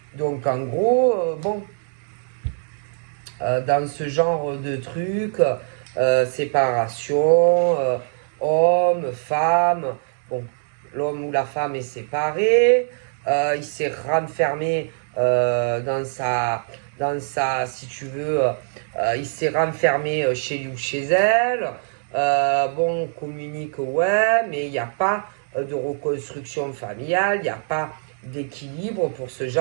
Donc en gros, dans ce genre de truc, séparation, homme, femme, bon, l'homme ou la femme est séparé, il s'est renfermé dans sa, si tu veux, il s'est renfermé chez lui ou chez elle. On communique, ouais, mais il n'y a pas de reconstruction familiale, il n'y a pas d'équilibre pour ce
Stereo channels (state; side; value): silent; left; 64 dB below the other